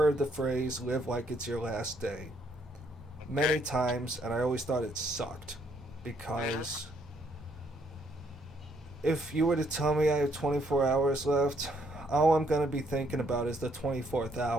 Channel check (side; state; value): both; normal; correlation 0.70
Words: the phrase live like it's your last day many times, and I always thought it sucked, because if you were to tell me I have 24 hours left, all I'm going to be thinking about is the 24th